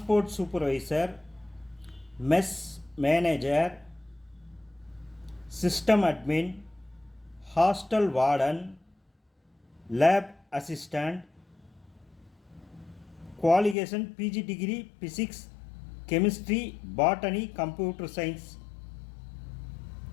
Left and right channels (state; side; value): drops out; right; at 13.8 s